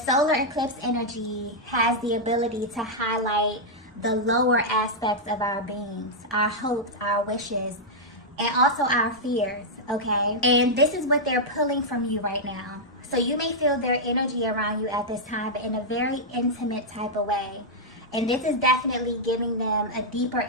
solar eclipse energy has the ability to highlight the lower aspects of our beings, our hopes, our wishes, and also our fears, okay? And this is what they're pulling from you right now. So you may feel their energy around you at this time, but in a very intimate type of way. And this is definitely giving them a deeper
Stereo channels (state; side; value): normal; both; correlation -0.06